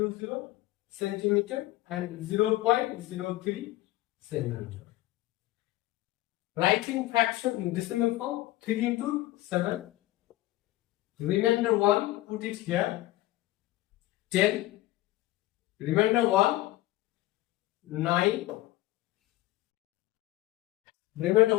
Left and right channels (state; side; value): quieter; right; 17.0 dB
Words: centimeter and 0.03 centimeter. Writing fraction in decimal form, 3 into 7. Remainder 1, put it here. 10. Remainder 1, 9. Remainder